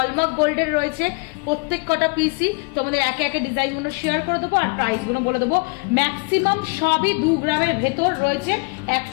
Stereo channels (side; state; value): right; quieter; 31.3 dB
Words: গোল্ডের রয়েছে। প্রত্যেক কটা পিসই তোমাদের একে একে ডিজাইনগুলো শেয়ার করে দেবো আর প্রাইসগুলো বলে দেবো। ম্যাক্সিমাম সবই 2 গ্রামের ভেতর রয়েছে,